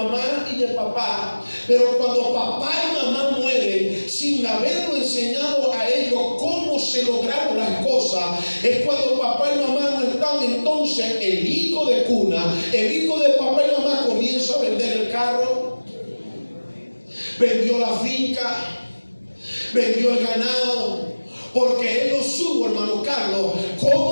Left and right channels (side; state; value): both; inverted; correlation -1.00